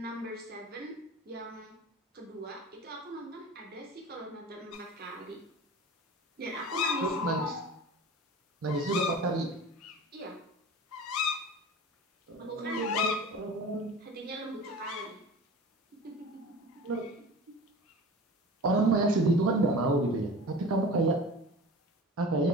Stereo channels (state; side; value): normal; both; correlation 0.38